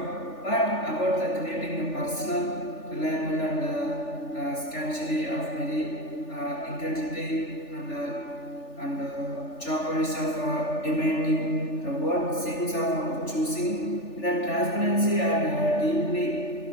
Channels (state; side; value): late; right; 3.4 ms